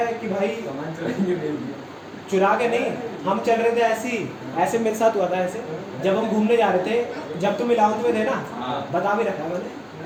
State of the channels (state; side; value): identical; both; correlation 1.00